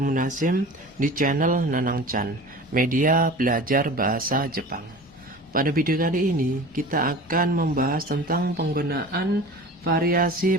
di channel Nanang Chan, media belajar bahasa Jepang. Pada video kali ini kita akan membahas tentang penggunaan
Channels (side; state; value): both; normal; correlation 0.38